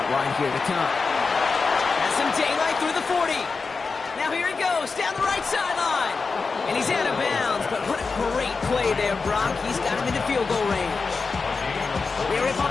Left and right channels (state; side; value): quieter; right; 4.5 dB